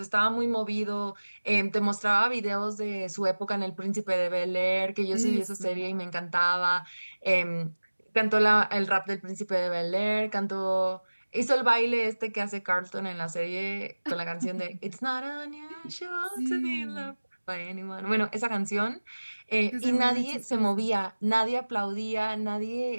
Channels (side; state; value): both; inverted; correlation -1.00